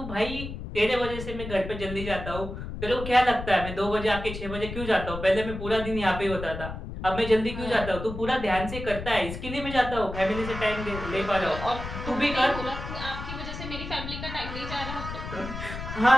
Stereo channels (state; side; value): noise; left; rumble, 8 dB below the sound